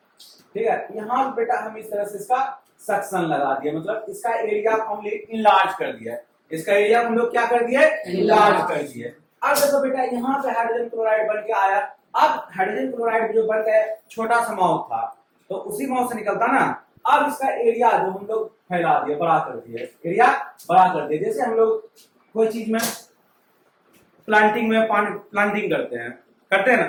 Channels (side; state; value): both; identical; correlation 1.00